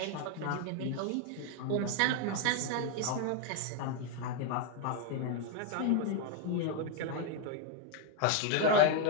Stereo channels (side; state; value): both; different; correlation 0.01